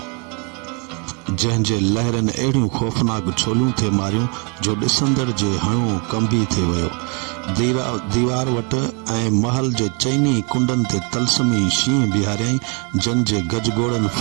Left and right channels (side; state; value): left; quieter; 34.1 dB